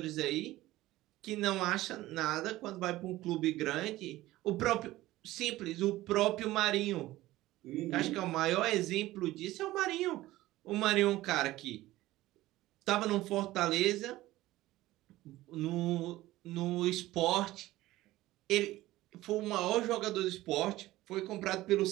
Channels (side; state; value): left; quieter; 16.9 dB